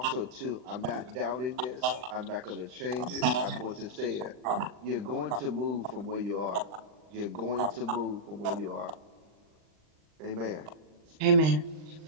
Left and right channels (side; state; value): left; late; 39 ms